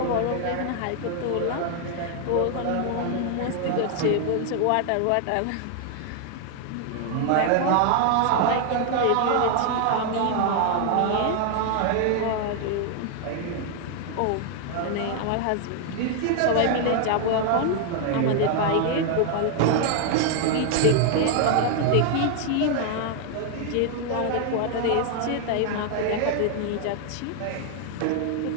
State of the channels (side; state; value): both; different; correlation 0.00